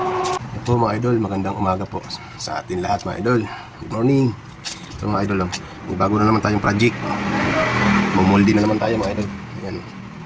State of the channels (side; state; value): both; identical; correlation 1.00